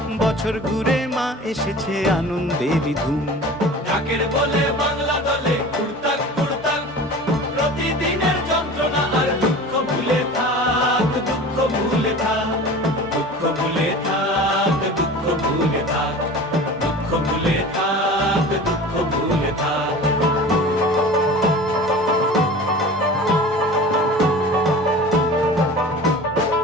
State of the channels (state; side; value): normal; both; correlation 0.38